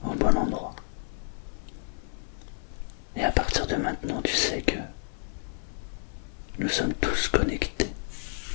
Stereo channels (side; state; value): right; silent; 58 dB below the other